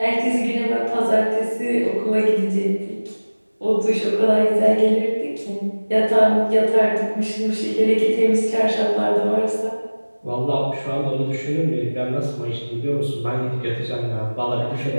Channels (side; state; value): both; inverted; correlation -1.00